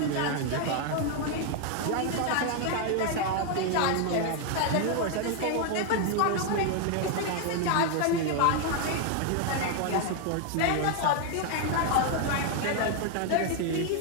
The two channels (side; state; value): both; different; correlation 0.00